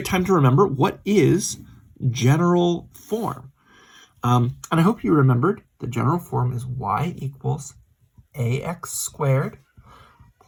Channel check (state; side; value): identical; both; correlation 1.00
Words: time to remember what is general form. And I hope you remembered the general form is y equals ax squared